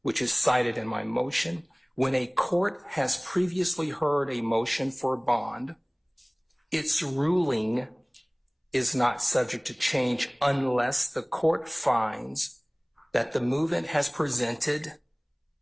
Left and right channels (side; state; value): both; identical; correlation 1.00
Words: which is cited in my motion. When a court has previously heard a motion for bond, its ruling is not subject to change unless the court finds that the movement has presented